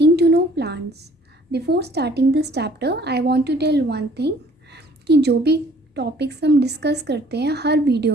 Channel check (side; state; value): both; normal; correlation 0.57